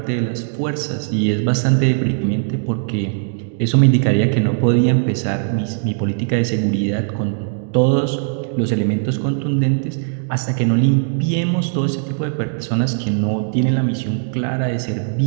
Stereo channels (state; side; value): silent; left; digital silence